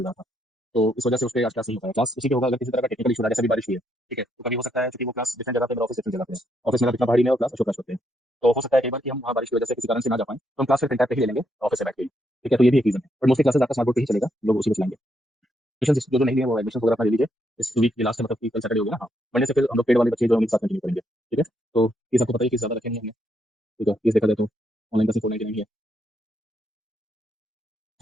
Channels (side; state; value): both; normal; correlation 0.77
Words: रहा था। तो इस वजह से उस पे आज क्लास नहीं हो पाया। क्लास उसी के होगा अगर किसी तरह का टेक्निकल इशू रहा, जैसे अभी बारिश हुई है। ठीक है, तो कभी हो सकता है क्योंकि वो क्लास डिफरेंट जगह पे, मेरा ऑफिस डिफरेंट जगह पे है। ऑफिस मेरा इतना भारी में और क्लास अशोक क्लास होते हैं। तो हो सकता है कई बार कि हम वहाँ बारिश की वजह से किसी कारण से ना जा पाएं, तो हम क्लास फिर प्रिंट पे ही ले लेंगे ऑफिस से बैठ के ही। ठीक है, तो ये भी एक रीजन है, बट मोस्टली क्लासेस आपका स्मार्ट बोर्ड पे ही चलेगा, लोग उसी में चलाएंगे। एडमिशन जो जो नहीं लिए वो एडमिशन वगैरह अपना ले लीजिए। इस वीक के लास्ट में, मतलब कि कल सैटरडे हो गया ना, हाँ। मंडे से फिर हम लोग पेड वाले बच्चे जो हम एक साथ कंटिन्यू करेंगे। ठीक है, तो फीस आपको पता है कि ज्यादा रखे नहीं हमने। ठीक है, फीस देखा जाए तो ऑनलाइन का सिर्फ 499 है।